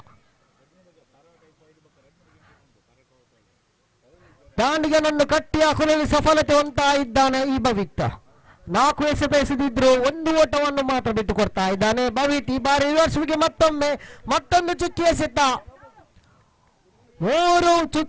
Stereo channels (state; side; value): identical; both; correlation 1.00